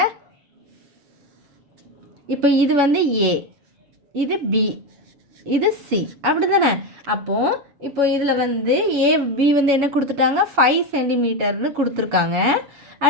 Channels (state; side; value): late; left; 7.1 ms